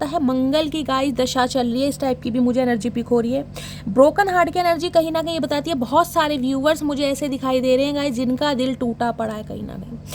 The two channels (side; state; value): both; identical; correlation 1.00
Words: है। मंगल की गाइस दशा चल रही है, इस टाइप की भी मुझे एनर्जी पिक हो रही है। ब्रोकन हार्ट की एनर्जी कहीं ना कहीं ये बताती है, बहुत सारे व्यूवर्स मुझे ऐसे दिखाई दे रहे हैं गाइस, जिनका दिल टूटा पड़ा है कहीं ना कहीं,